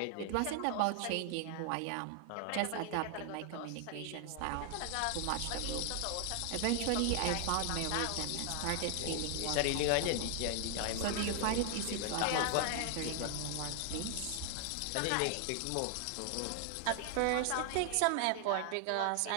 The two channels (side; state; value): both; different; correlation 0.00